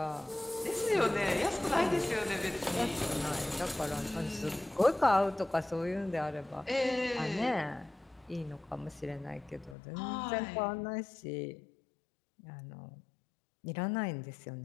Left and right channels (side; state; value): right; drops out; at 9.8 s